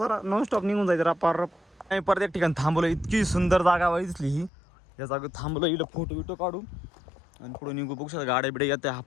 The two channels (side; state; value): right; drops out; at 4.5 s